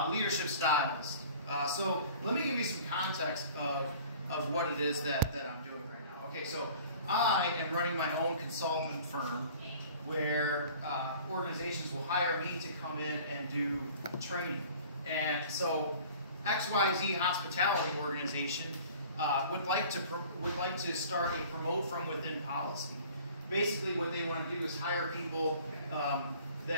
leadership styles. So let me give you some context of what it is that I'm doing right now. Okay, so I am running my own consultant firm where organizations will hire me to come in and do training. And so XYZ Hospitality Organization would like to start a promote from within policy. Basically what they want to do is hire people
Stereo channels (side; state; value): both; inverted; correlation -0.47